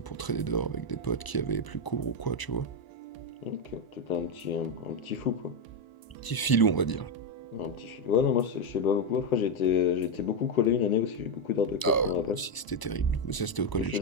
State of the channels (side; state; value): right; late; 1.0 ms